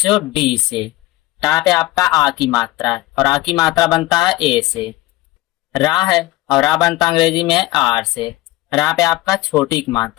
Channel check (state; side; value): quieter; right; 17.8 dB